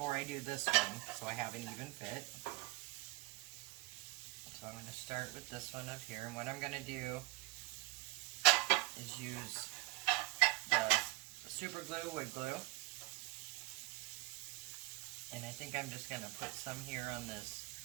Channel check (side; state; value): left; quieter; 21.8 dB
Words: I do this one, so I have an even fit. So I'm going to start with this one up here, and what I'm going to do is use the super glue, wood glue, and I think I'm just going to put some here on this